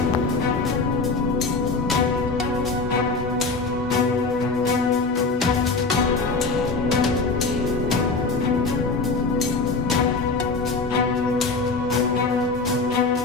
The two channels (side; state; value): right; quieter; 3.9 dB